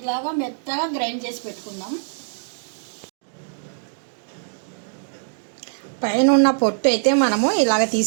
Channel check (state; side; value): silent; left; digital silence